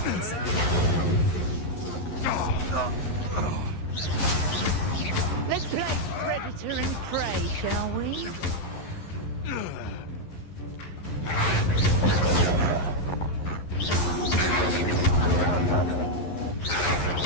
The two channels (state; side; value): late; right; 11 ms